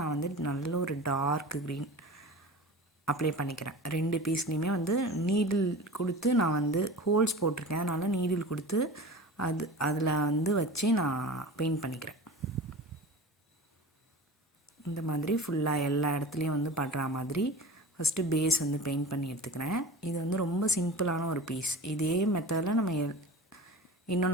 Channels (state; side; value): normal; both; correlation 0.34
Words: வந்து நல்ல ஒரு டார்க் க்ரீன் அப்ளை பண்ணிக்கிறேன். 2 பீஸ்லேயுமே வந்து நீடில் கொடுத்து நான் வந்து ஹோல்ஸ் போட்டிருக்கேன். அதனால் நீடில் கொடுத்து அதில் வந்து வச்சு நான் பெயிண்ட் பண்ணிக்கிறேன். இந்த மாதிரி ஃபுல்லாக எல்லா இடத்துலையும் வந்து பண்ணுற மாதிரி ஃபஸ்ட்டு பேஸ் வந்து பெயிண்ட் பண்ணி எடுத்துக்கிறேன். இது வந்து ரொம்ப சிம்பிளான ஒரு பீஸ். இதே மெத்தடில் நம்ம